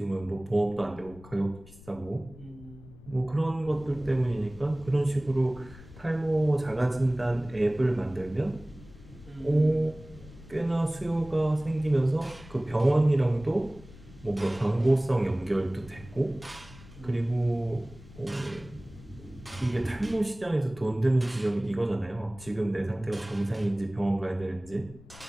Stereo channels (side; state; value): left; noise; rumble, 19 dB below the sound